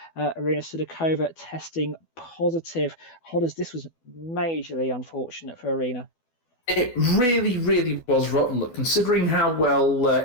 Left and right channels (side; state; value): right; late; 12 ms